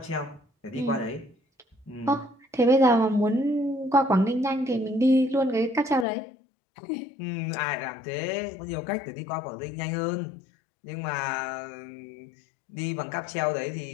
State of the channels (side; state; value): right; drops out; at 6.1 s